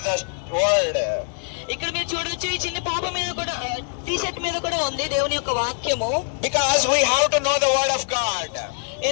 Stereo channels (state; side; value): silent; right; 62 dB below the other